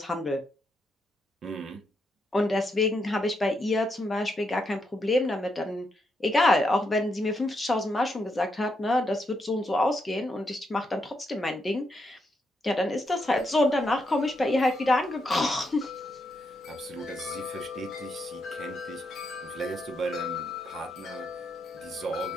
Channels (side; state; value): both; normal; correlation 0.80